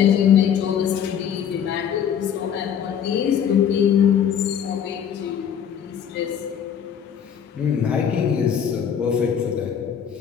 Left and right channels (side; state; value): right; quieter; 8.4 dB